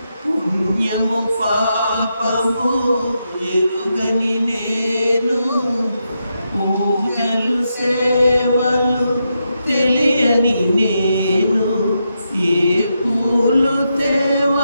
పుణ్యము పాపము ఎరుగని నేను పూజలు సేవలు తెలియని నేను ఏ పూలు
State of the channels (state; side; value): inverted; both; correlation -0.84